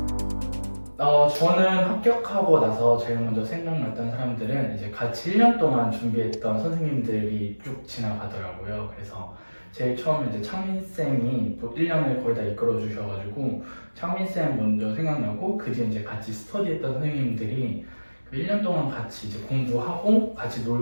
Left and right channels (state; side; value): inverted; both; correlation -1.00